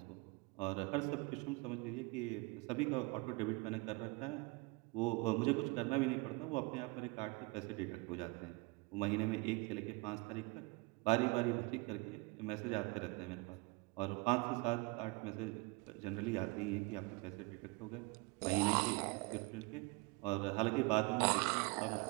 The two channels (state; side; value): quieter; left; 26.7 dB